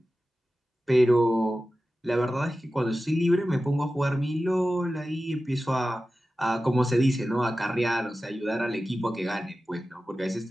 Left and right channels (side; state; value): both; normal; correlation 0.94